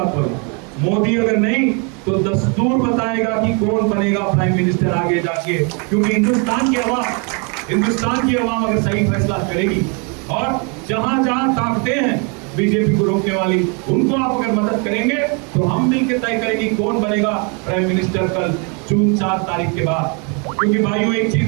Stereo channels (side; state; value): left; quieter; 34.8 dB